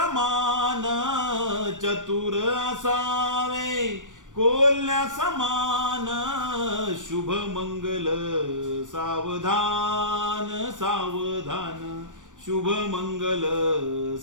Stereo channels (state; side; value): late; left; 0.87 ms